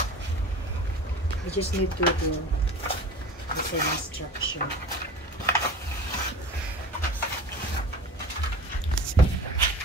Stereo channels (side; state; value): both; normal; correlation 0.37